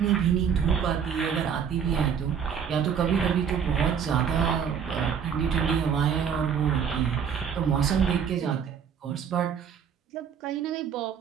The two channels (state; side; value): quieter; left; 7.4 dB